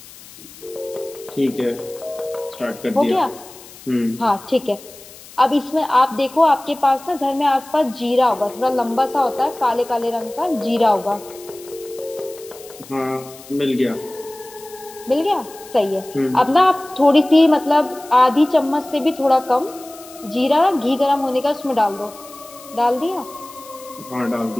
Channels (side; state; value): left; noise; hiss, 19 dB below the sound